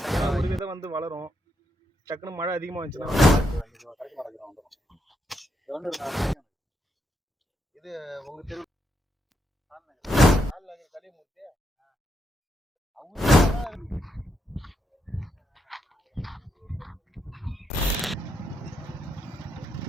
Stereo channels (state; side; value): normal; both; correlation 0.80